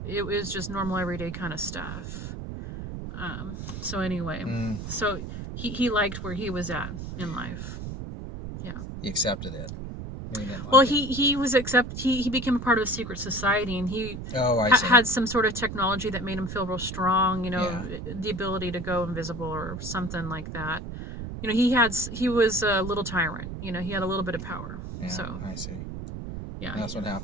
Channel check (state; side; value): noise; right; rumble, 8 dB below the sound